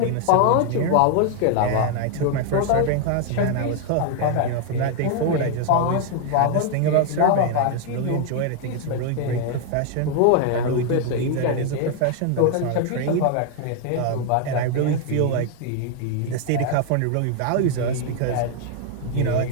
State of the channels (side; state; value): both; different; correlation 0.00